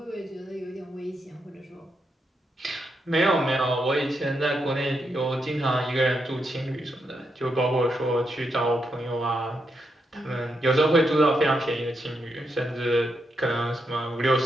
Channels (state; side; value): normal; both; correlation 0.82